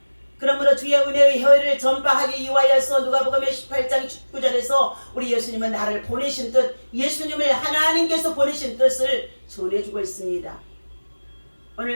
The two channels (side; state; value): both; inverted; correlation -1.00